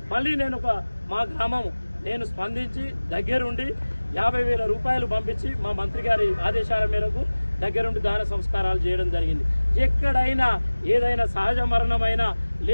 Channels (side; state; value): both; inverted; correlation -1.00